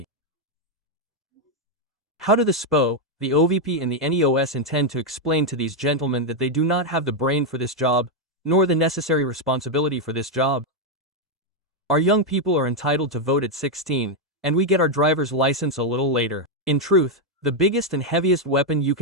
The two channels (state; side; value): normal; both; correlation 0.01